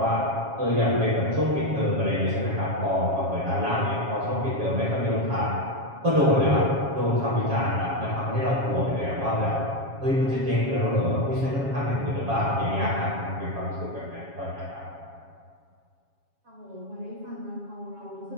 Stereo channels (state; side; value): late; left; 7.3 ms